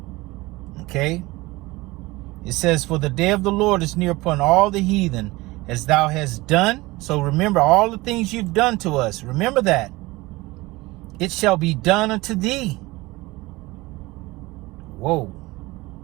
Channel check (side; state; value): left; quieter; 21.0 dB